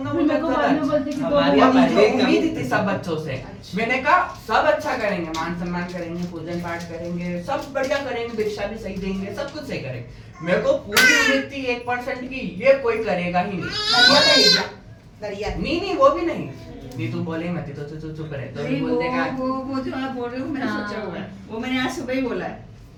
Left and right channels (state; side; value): identical; both; correlation 1.00